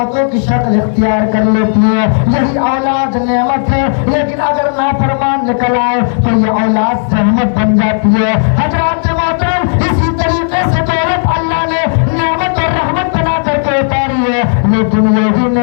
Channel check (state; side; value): silent; right; digital silence